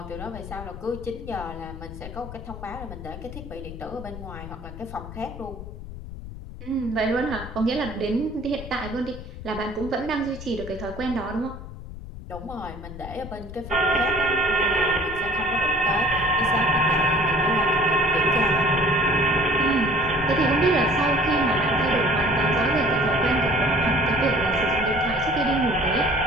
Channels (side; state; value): left; noise; rumble, 12 dB below the sound